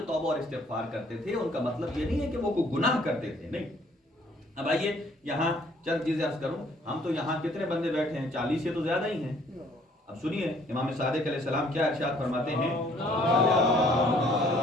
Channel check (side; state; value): both; normal; correlation 0.61